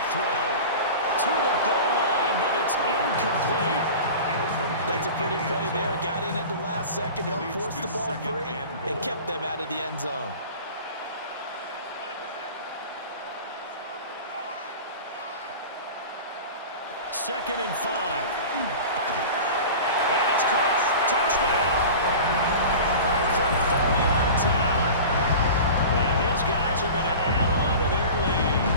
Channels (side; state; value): both; inverted; correlation -0.36